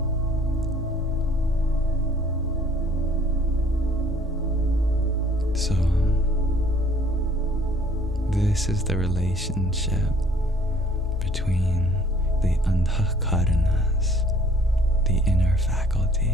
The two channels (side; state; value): both; normal; correlation 0.57